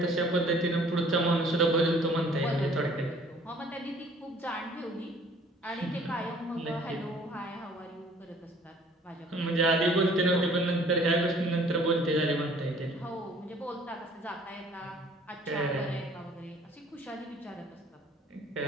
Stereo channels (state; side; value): normal; both; correlation 0.55